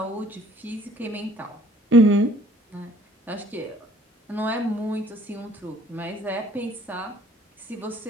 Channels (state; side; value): normal; both; correlation 0.57